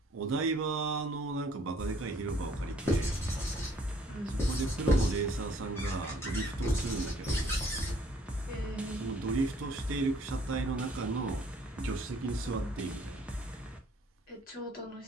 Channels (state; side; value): normal; both; correlation 0.61